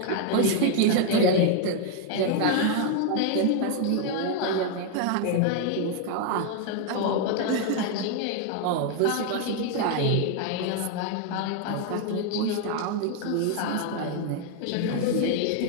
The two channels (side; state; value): both; different; correlation 0.00